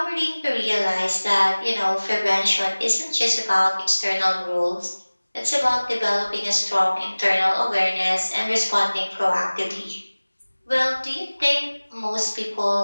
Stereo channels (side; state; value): both; inverted; correlation -1.00